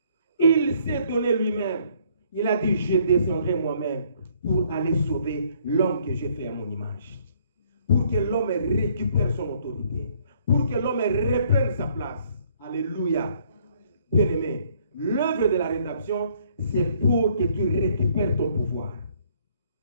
Il s'est donné lui-même. Il a dit, je descendrai moi-même pour aller sauver l'homme que j'ai fait à mon image. Pour que l'homme récupère son autorité. Pour que l'homme reprenne sa place. Alléluia. Bien-aimé, l'œuvre de la rédemption, c'est pour que tu récupères ton pouvoir.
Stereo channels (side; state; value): both; inverted; correlation -0.64